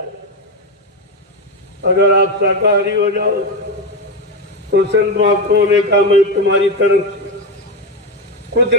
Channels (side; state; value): both; normal; correlation 0.12